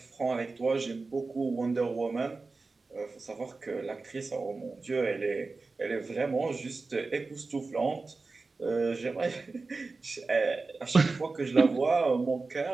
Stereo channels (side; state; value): left; quieter; 3.8 dB